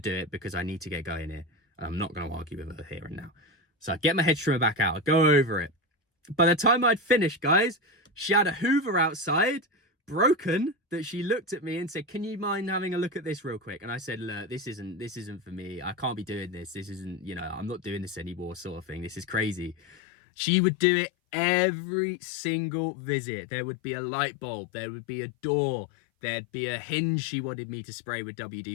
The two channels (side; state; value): right; drops out; at 20.0 s